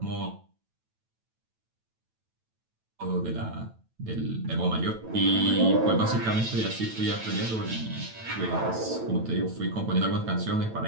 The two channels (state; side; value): late; left; 9.0 ms